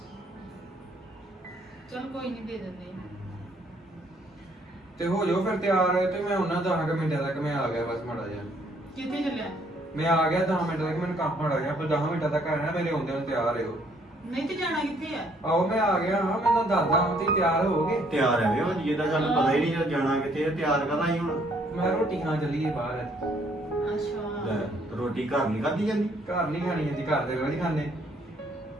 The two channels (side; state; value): both; normal; correlation 0.65